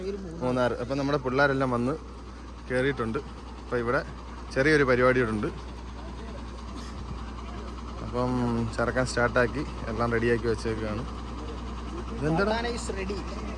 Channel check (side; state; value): both; identical; correlation 1.00